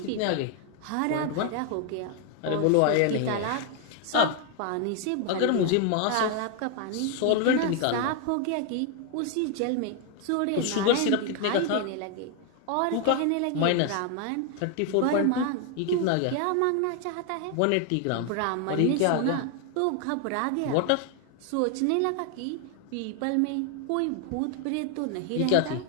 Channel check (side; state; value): both; different; correlation 0.00